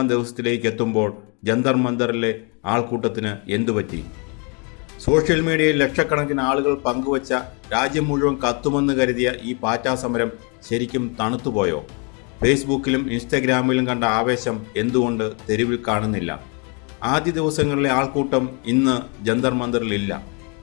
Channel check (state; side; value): quieter; right; 35.0 dB